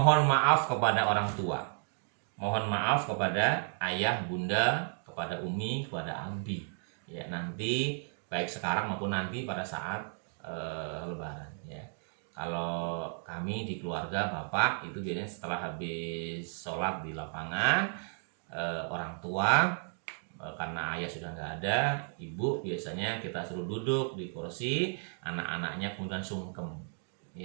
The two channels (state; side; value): silent; left; 55 dB below the other